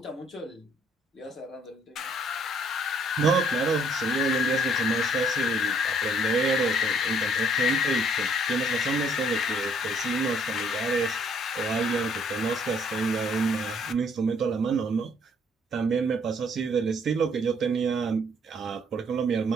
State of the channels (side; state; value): both; normal; correlation 0.63